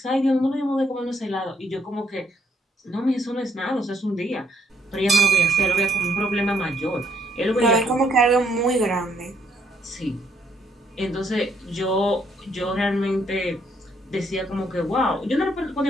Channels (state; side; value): normal; both; correlation 0.69